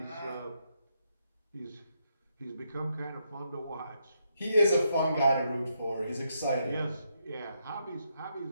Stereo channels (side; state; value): both; inverted; correlation -0.79